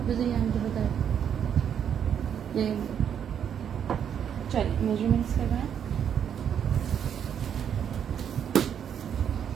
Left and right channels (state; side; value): quieter; left; 8.5 dB